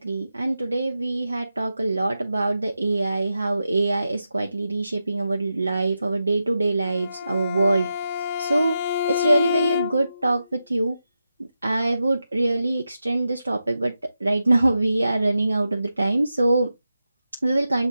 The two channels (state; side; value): inverted; both; correlation -0.89